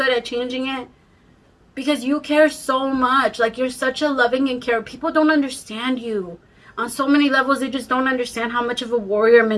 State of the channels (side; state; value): both; identical; correlation 1.00